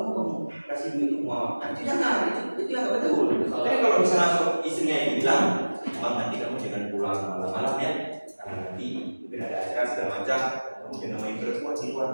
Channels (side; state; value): both; inverted; correlation -1.00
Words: mau kamu kasih duit itu ke mama. Nah, itu jangan, itu yang gak betul. Tapi kalau misalnya istrinya itu bilang, "Bang, nanti kamu jangan pulang malam-malam ya, karena nanti mungkin ada acara segala macam, kamu jangan main perempuan di luar."